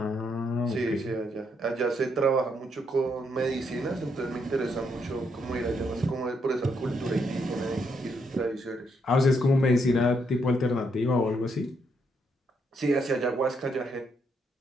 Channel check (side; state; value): both; normal; correlation 0.76